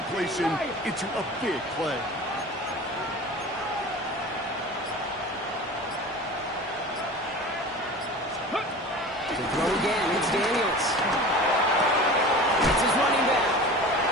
into a big play. To throw again, it's Daniels. It's his running back.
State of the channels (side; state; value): both; normal; correlation 0.36